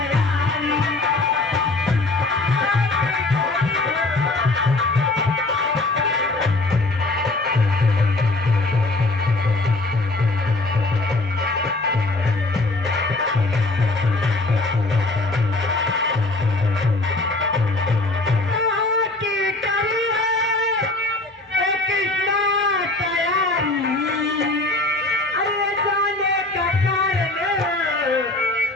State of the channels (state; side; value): quieter; right; 3.0 dB